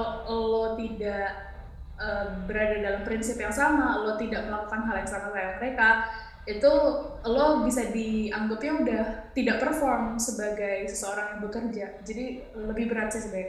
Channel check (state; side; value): identical; both; correlation 1.00